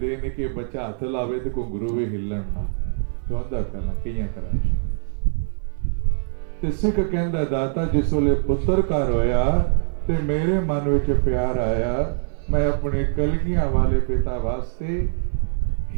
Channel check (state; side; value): silent; left; 57 dB below the other